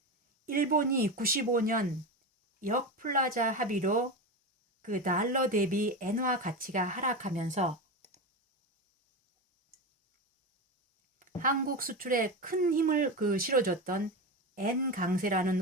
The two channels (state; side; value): normal; both; correlation 0.20